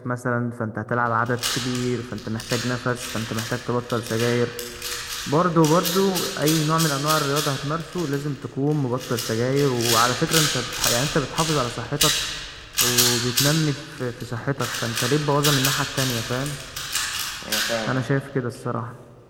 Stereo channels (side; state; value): both; identical; correlation 1.00